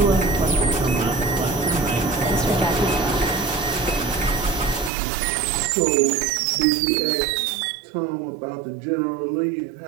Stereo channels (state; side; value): drops out; left; at 4.9 s